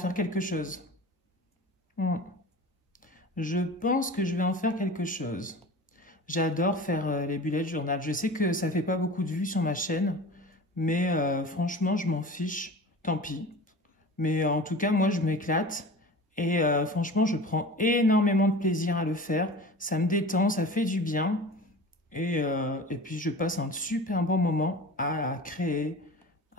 quelque chose. Je pense que je vais en faire quelque chose. J'adore faire les bullet journal. Je sais que ça fait pas beaucoup de vues sur ma chaîne, mais franchement, je m'en fiche. Tant pis. Mais en tout cas, moi, je m'éclate. Et franchement, je prends énormément de plaisir à le faire. Ça me détend, ça fait du bien. Et puis, je passe un super bon moment à créer,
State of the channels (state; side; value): normal; both; correlation 0.36